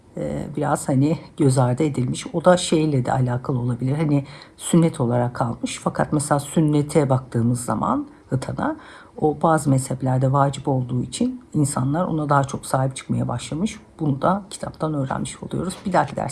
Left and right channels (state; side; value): identical; both; correlation 1.00